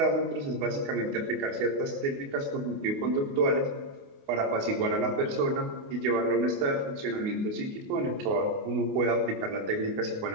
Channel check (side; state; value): left; late; 28 ms